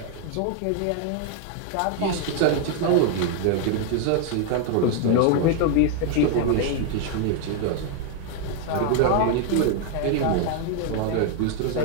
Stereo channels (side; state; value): both; different; correlation 0.00